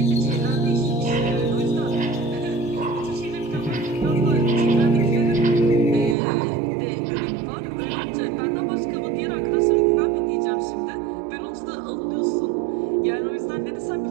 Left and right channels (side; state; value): left; drops out; at 6.2 s